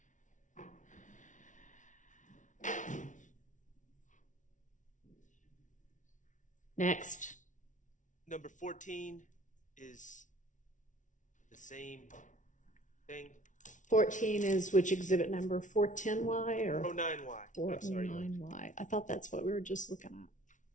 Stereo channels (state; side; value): late; right; 0.37 ms